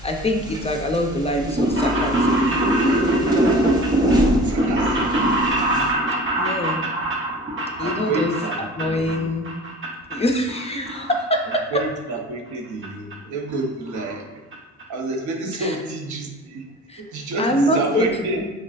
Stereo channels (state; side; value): normal; both; correlation 0.41